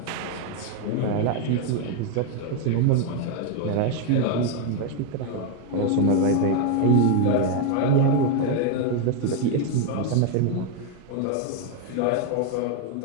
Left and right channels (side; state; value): both; different; correlation 0.01